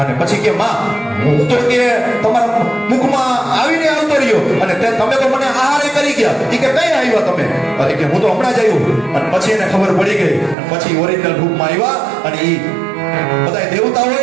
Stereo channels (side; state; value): left; drops out; at 10.6 s